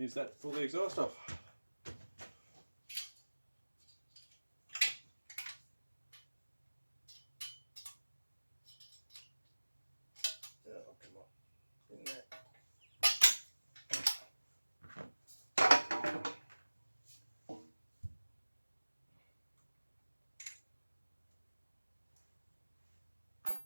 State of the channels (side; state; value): both; inverted; correlation -1.00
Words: that to pull the exhaust off. Oh, come on. In there.